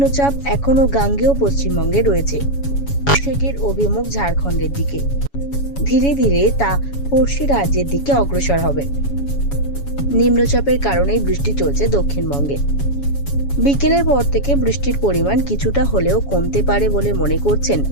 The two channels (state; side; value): late; right; 7.1 ms